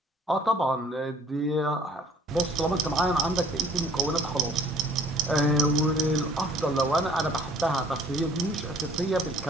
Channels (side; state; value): both; normal; correlation 0.56